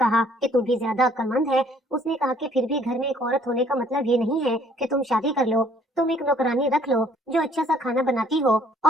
कि तू भी ज्यादा अक्लमंद है। उसने कहा कि फिर भी घर में एक औरत होने का मतलब ये नहीं है कि तुम शादी कर लो। तुम एक नौकरानी रख लो जो अच्छा सा खाना बनाती हो।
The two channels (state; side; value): normal; both; correlation 0.60